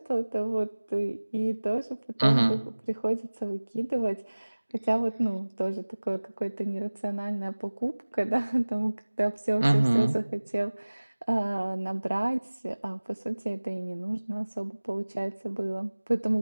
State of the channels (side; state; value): both; inverted; correlation -1.00